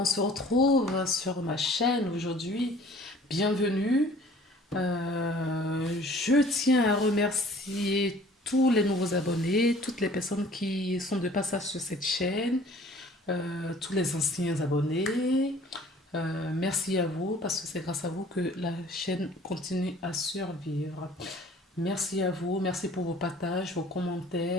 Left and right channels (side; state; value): both; normal; correlation 0.51